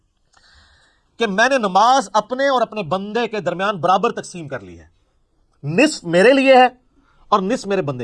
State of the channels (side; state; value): both; identical; correlation 1.00